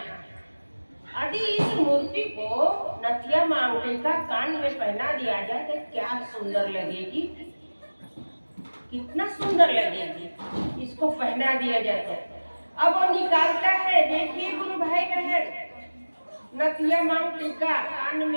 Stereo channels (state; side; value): inverted; both; correlation -1.00